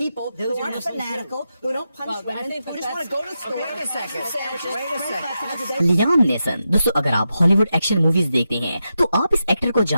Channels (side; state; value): both; inverted; correlation -0.88